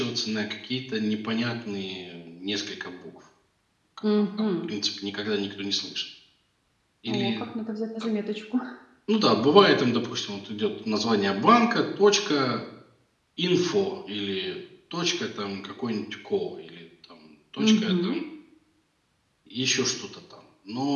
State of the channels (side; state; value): both; identical; correlation 1.00